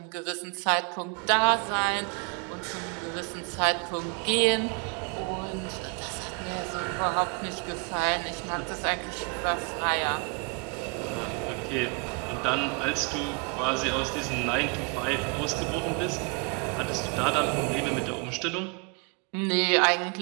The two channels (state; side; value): quieter; left; 33.3 dB